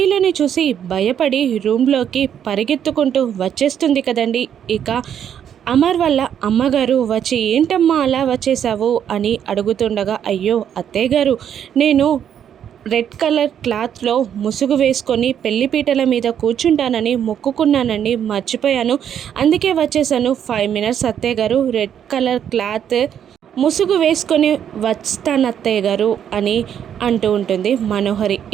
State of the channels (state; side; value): quieter; left; 9.1 dB